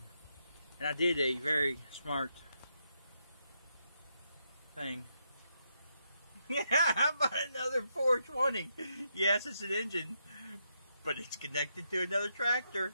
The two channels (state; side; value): inverted; both; correlation -0.80